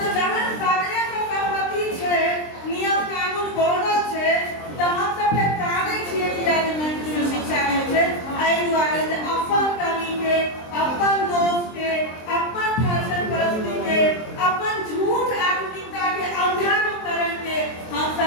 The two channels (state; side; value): late; right; 23 ms